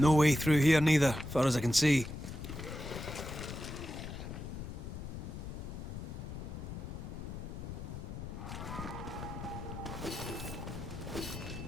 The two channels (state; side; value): noise; left; rumble, 8 dB below the sound